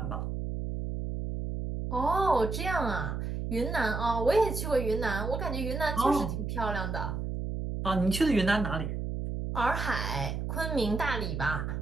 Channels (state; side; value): noise; right; hum, 3 dB below the sound